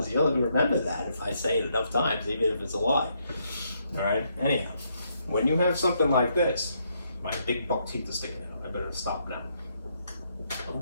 you'll remember that if I say it enough times, even if it's a lie. All right? Anyhow, when you have something like this, my big buck teeth are sticking out. I better stop now.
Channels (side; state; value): both; inverted; correlation -0.75